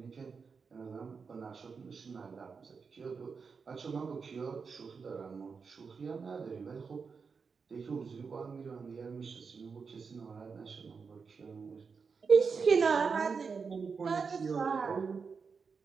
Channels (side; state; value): left; quieter; 5.4 dB